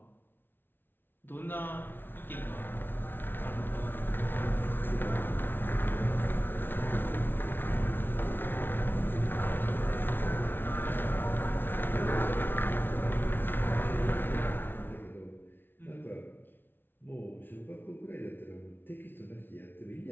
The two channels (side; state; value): right; late; 0.10 ms